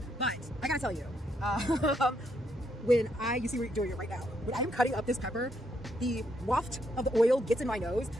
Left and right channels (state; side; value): normal; both; correlation 0.76